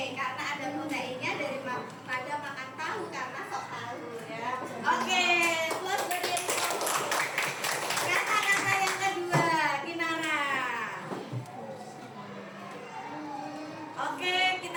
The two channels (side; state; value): both; identical; correlation 1.00